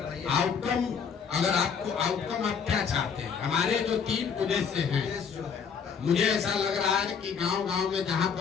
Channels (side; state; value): right; quieter; 6.5 dB